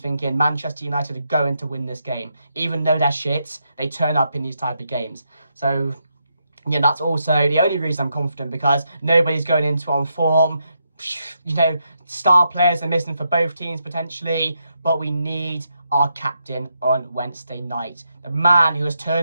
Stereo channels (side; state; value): both; inverted; correlation -0.81